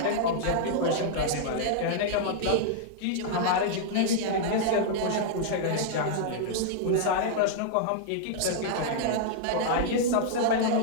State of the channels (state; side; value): different; both; correlation -0.01